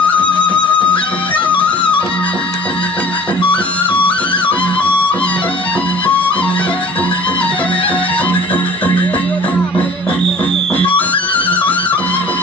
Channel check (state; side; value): normal; both; correlation 0.47